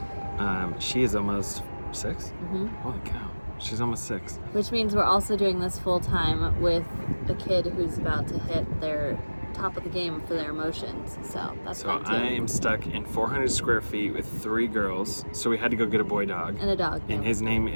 she is almost 6. Mm-hmm. Holy cow, she's almost 6. Which means we're also doing this full time with a kid who's about to hit their top of the game for their emotions. So that's fun too. I am stuck in 400 square feet with 3 girls. So we had to go get a boy dog. And a dog. And his name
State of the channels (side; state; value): both; inverted; correlation -1.00